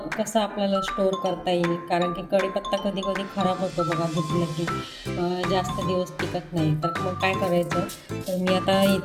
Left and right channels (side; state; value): both; identical; correlation 1.00